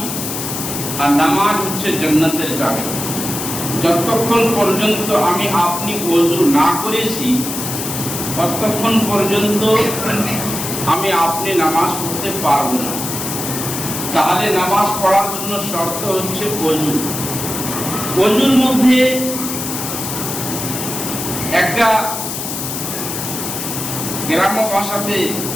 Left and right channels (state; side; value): noise; left; hiss, 5 dB below the sound